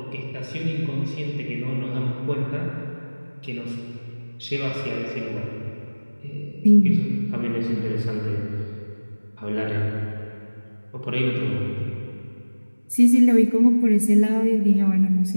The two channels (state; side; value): inverted; both; correlation -1.00